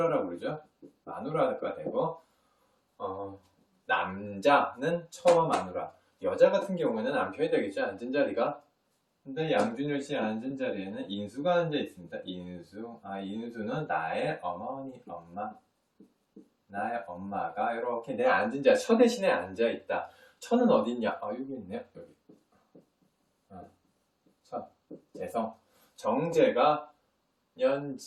그러죠. 마누라가 되고, 남자는 처와 마누라. 여자 같은 경우에는 남편이 되겠죠. 앉은 자리가. 근데 양준일 씨의 앉은 자리에는 인수가 앉아 있습니다. 인수. 인수는 나의 어머니, 엄마. 나의 엄마가 이렇게 내 앉은 자리, 처 대신에 앉아 있다. 처는 어디 있냐? 여기 있네요. 여기. 처. 재성. 정제가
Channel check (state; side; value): identical; both; correlation 1.00